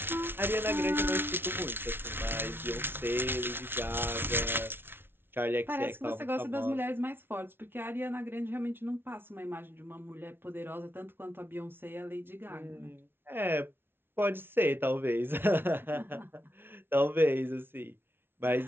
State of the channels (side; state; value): left; late; 0.11 ms